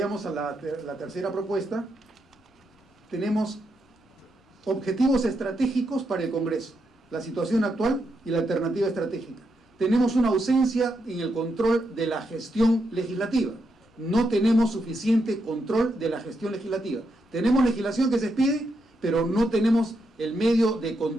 a la tercera propuesta. Tenemos objetivos estratégicos para el Congreso, la situación actual y la alternativa estratégica. Tenemos una ausencia en el control de la gestión legislativa. No tenemos suficiente control de la gestión legislativa. Tenemos legislación que se expide, pero no tenemos el medio de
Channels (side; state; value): both; normal; correlation 0.82